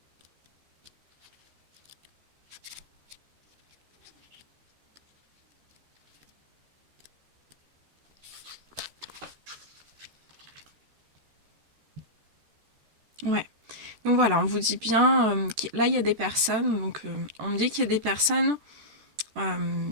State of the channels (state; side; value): late; left; 14 ms